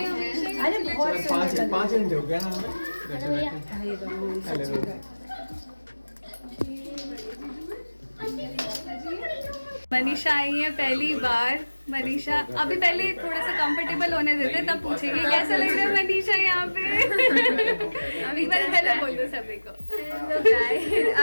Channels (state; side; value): inverted; both; correlation -1.00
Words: हमेशा। अरे बहुत सुंदर। 5 घंटे हो गया ना हमें। मनीषा आई है पहली बार। मनीषा अभी पहले थोड़ा सा कंफर्टेबल होने देते, तब पूछेगी कैसा लग रहा है मनीषा यहाँ पे। अभी बार पहले बोल दो सभी को।